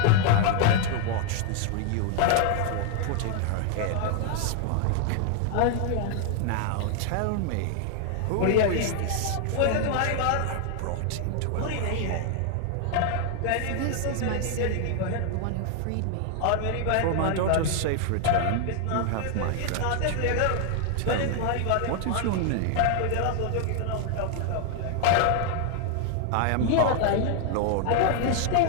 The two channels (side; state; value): both; different; correlation 0.00